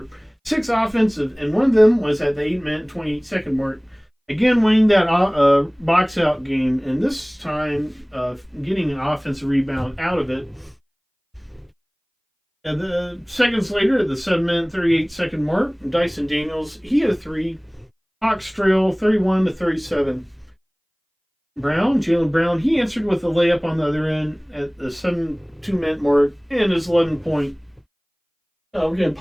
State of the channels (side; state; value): both; identical; correlation 1.00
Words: 6 offensive, and one of them was at the 8-minute, 28-second mark. Again, winning that box-out game, and this time getting an offensive rebound out of it. And the seconds later, at the 7-minute, 38-second mark, Dyson Daniels, he had a 3. Hawks trail 31-37. Jaylen Brown, he answered with a layup on the other end at the 7-2-minute mark and his 11-point. We're going to